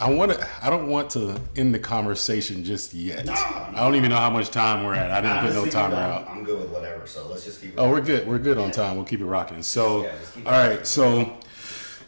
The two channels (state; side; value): inverted; both; correlation -1.00